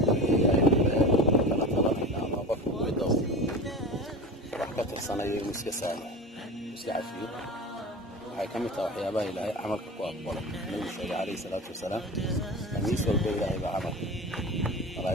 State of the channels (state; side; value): normal; both; correlation 0.31